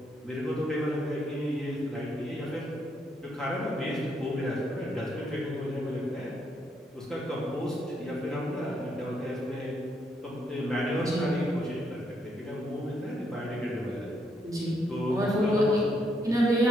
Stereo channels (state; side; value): normal; both; correlation 0.75